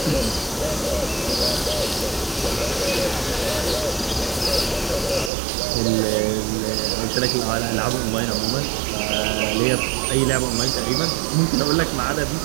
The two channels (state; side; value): drops out; left; at 5.3 s